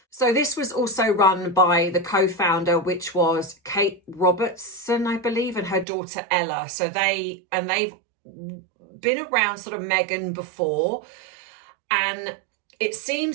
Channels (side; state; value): left; drops out; at 5.9 s